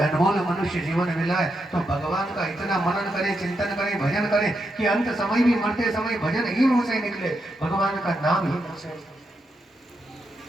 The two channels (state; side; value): normal; both; correlation 0.83